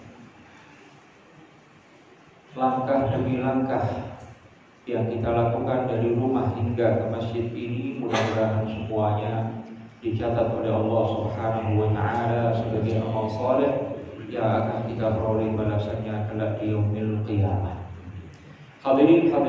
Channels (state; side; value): identical; both; correlation 1.00